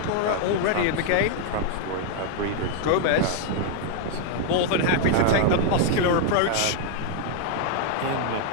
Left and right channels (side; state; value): both; different; correlation 0.00